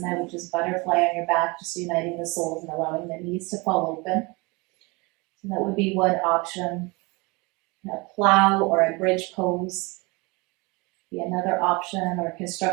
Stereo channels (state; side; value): quieter; left; 26.8 dB